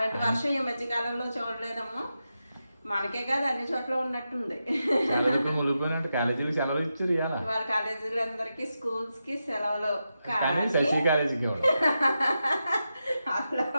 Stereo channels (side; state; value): both; inverted; correlation -0.89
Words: వర్షం ఈ మధ్యకాలంలో చూడలేదమ్మా. మనకే కాదు అన్ని చోట్ల ఉన్నట్టుంది. కాలేజీకి సెలవులు ఇచ్చారు వాళ్ళ కాలేజీలందరికి స్కూల్స్ కి సెలవులు. శశి కాలేజీకి అట్లా